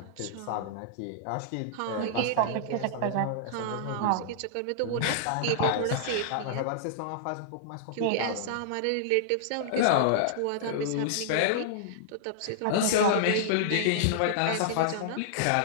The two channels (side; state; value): both; different; correlation -0.01